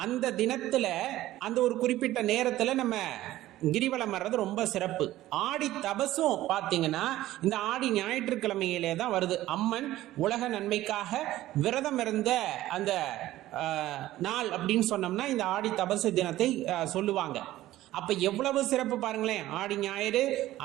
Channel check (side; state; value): left; quieter; 15.2 dB